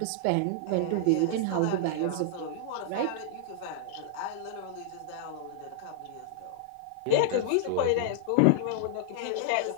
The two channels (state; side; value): different; both; correlation -0.01